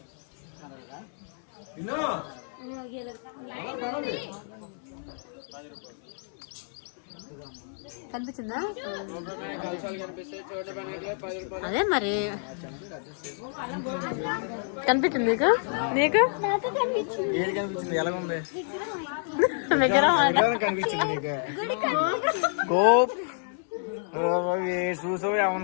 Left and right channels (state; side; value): silent; right; digital silence